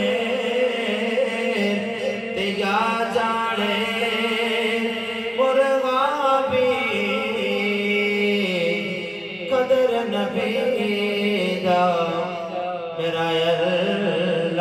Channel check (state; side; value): identical; both; correlation 1.00